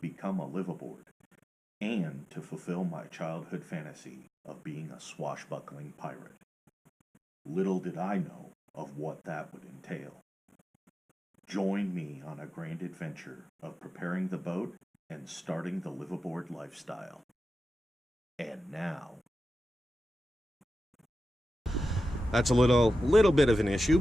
a liveaboard and to fulfill my childhood fantasy of being a swashbuckling pirate. Little did I know of what that would entail. Join me on a grand adventure of preparing the boat and starting the liveaboard lifestyle. And now... That's a little bit of an issue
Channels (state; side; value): normal; both; correlation 0.92